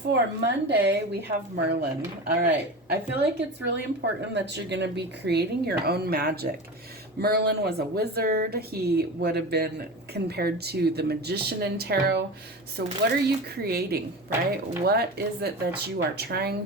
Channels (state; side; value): normal; both; correlation 0.28